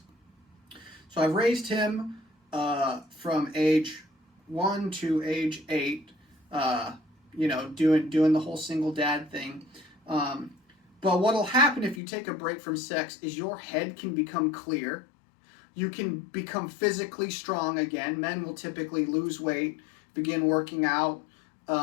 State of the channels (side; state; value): right; drops out; at 12.0 s